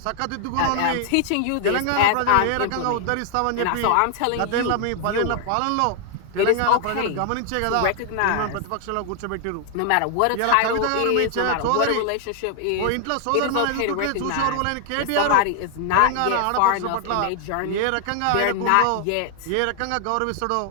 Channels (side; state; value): both; different; correlation 0.00